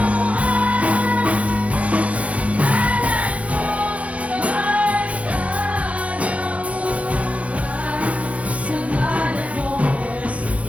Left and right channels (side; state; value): left; late; 0.065 ms